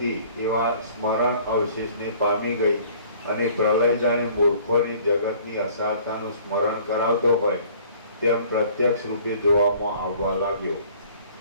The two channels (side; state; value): both; inverted; correlation -0.53